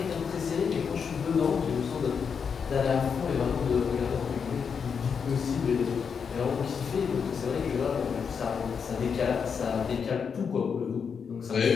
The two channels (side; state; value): right; quieter; 6.4 dB